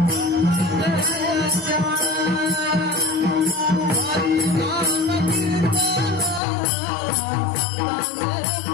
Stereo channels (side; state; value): right; drops out; at 6.4 s